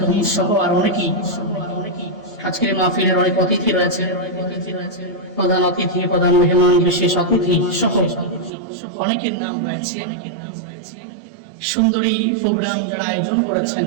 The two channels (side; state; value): left; drops out; at 8.5 s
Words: সহ আর অনেকেই আজকের মাহফিলের অনেক অতিথি রয়েছে প্রধান অতিথি প্রধান মেহমান বিশেষ অতিথি সহ অনেকের নাম রয়েছে সুন্দরী প্রোগ্রাম যারা আয়োজন করেছেন